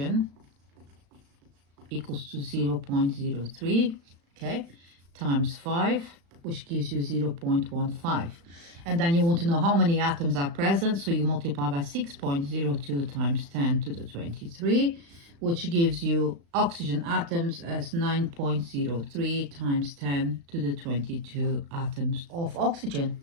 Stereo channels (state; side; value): late; left; 35 ms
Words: equals to 0.03, okay, times 5, which gives you 0.15. And then you want to know how many atoms are present, so you multiply by 6.02 times 10 to the 23, which gives you oxygen atoms as 9.03 times 10 to the 22 atoms of oxygen.